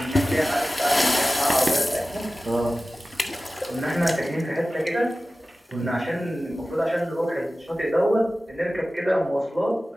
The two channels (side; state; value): both; normal; correlation 0.96